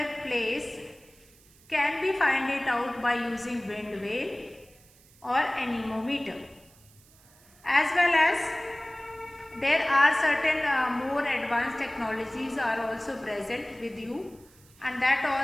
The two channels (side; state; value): right; noise; hiss, 27 dB below the sound